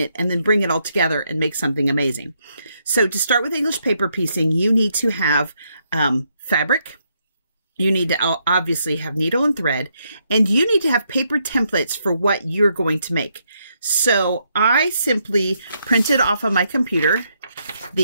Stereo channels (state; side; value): inverted; both; correlation -0.77